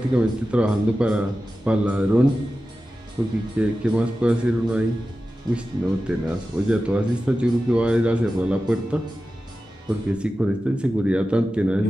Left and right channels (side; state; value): both; normal; correlation 0.94